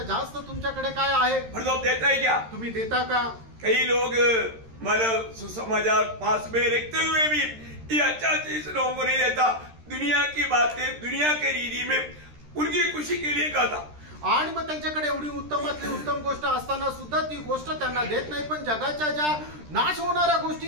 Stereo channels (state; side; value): late; left; 13 ms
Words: जास्त तुमच्याकडे काय आहे? मतलब देता है क्या? तुम्ही देता का? कई लोग मतलब सुसमाचार पास में रखते हुए भी ये अच्छा चीज लोगों को नहीं देता. दुनिया की बातें दुनिया के रीति में उनकी खुशी के लिए कहता. आणि मग त्यांच्याकडे एवढी उत्तमातली उत्तम गोष्ट असताना सुद्धा ती गोष्ट त्यांना देत नाही, पण जगाच्या ज्या नाश होणाऱ्या